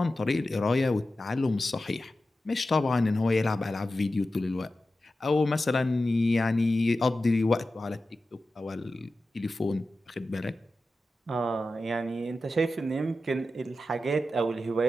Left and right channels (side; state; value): both; normal; correlation 0.93